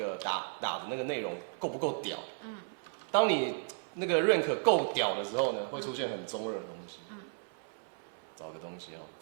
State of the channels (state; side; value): silent; left; 55 dB below the other